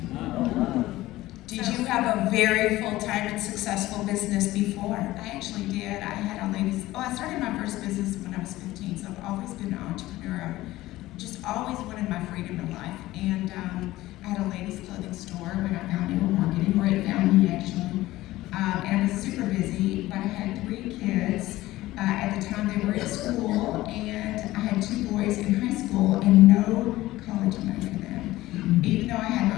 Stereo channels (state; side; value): quieter; right; 16.9 dB